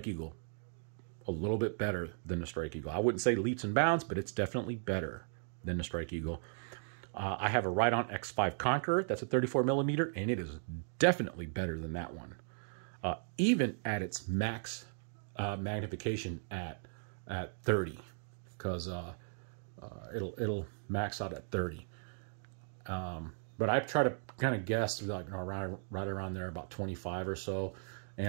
Eagle. A little bit better than the Strike Eagle. I wouldn't say leaps and bounds, but it's definitely better than the Strike Eagle. I have a Right-On X5 Conqueror. That's a 34 millimeter, and it is definitely better than that one. Even at its max magnification at 30, because it'll max out at 30. But I try to kind of guess, like, right around there, about 25 or so,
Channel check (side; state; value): left; silent; digital silence